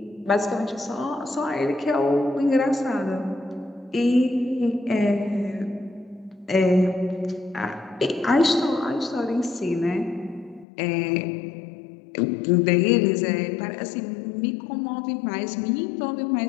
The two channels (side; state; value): right; drops out; at 10.7 s